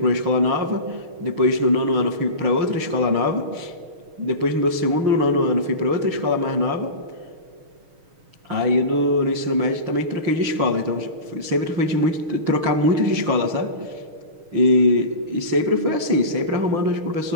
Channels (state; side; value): late; left; 6.4 ms